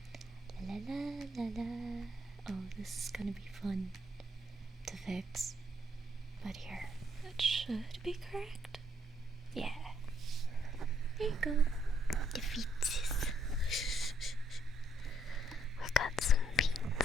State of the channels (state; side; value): normal; both; correlation 0.71